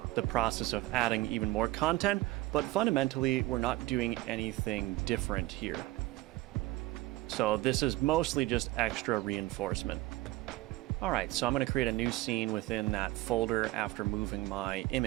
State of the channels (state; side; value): quieter; left; 18.5 dB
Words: the process of adding even more content, but fundamentally, we're not doing anything different here. So this is mostly just extra reinforcement. All right, so I'm going to create a new scene within that folder after moving my